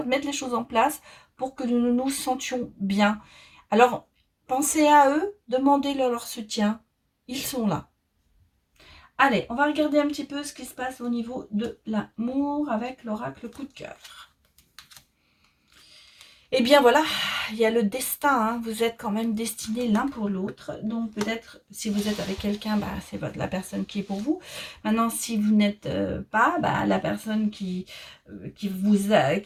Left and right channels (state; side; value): identical; both; correlation 1.00